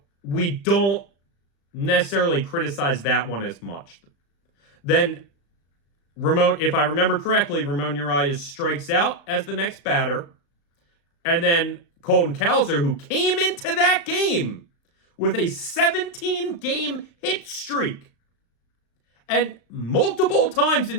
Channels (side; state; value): right; late; 35 ms